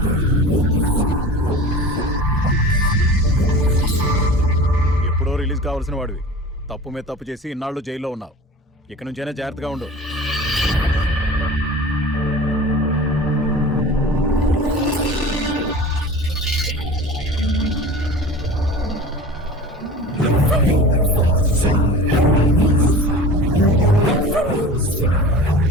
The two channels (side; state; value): both; normal; correlation 0.37